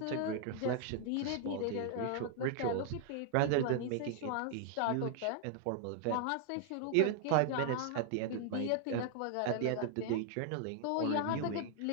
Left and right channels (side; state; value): both; different; correlation 0.00